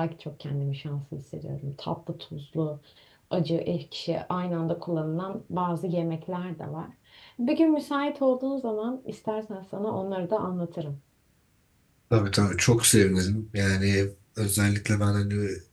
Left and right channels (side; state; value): both; identical; correlation 1.00